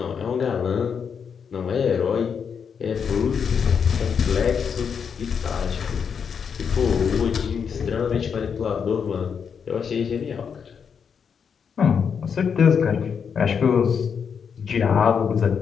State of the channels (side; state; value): right; quieter; 6.7 dB